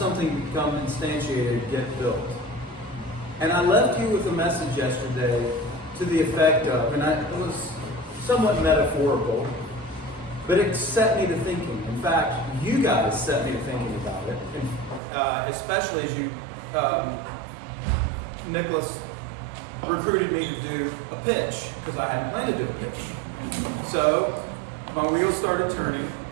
something become instantiated, get built? And I left you with a message yesterday to the effect of, and it was somewhat metaphorical, but it set me to thinking. In fact, you guys set me to thinking about it, and, especially as you, Nicholas recruited me to do a pitch, because I hadn't planned to do a pitch. So my wheels started turning,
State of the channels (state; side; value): drops out; left; at 15.0 s